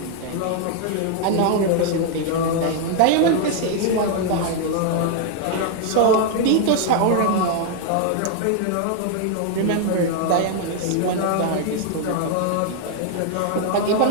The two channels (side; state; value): both; different; correlation 0.00